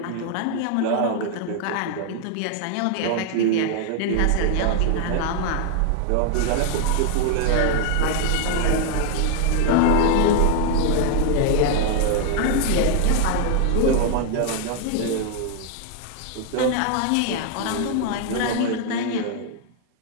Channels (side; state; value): both; different; correlation 0.00